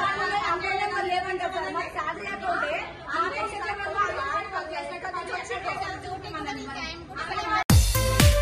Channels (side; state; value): both; identical; correlation 1.00